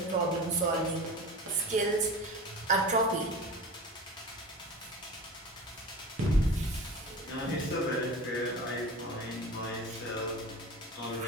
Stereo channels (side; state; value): both; normal; correlation 0.33